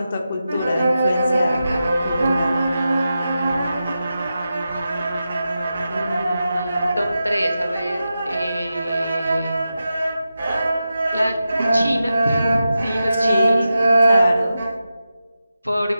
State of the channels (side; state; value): both; inverted; correlation -0.91